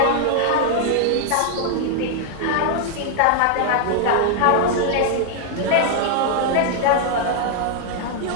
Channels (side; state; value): both; different; correlation 0.00